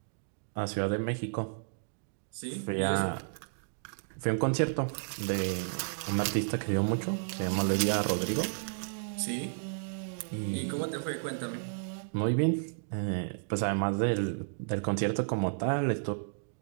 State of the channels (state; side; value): silent; left; digital silence